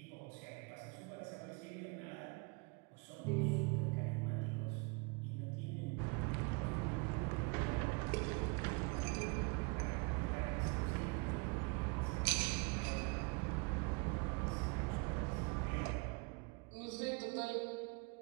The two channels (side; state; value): left; quieter; 30.9 dB